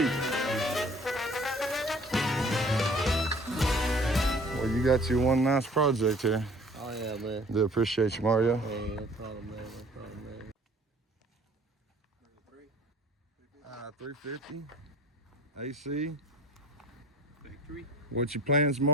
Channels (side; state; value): both; normal; correlation 0.52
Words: Well, you got you one nice project here. Oh yeah, man. Do appreciate you, Mario. Hey, no problem, man. No problem, man. 350. AC. Factory. What's your plans,